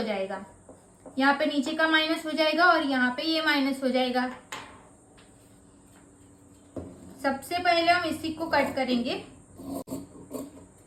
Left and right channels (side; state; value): both; identical; correlation 1.00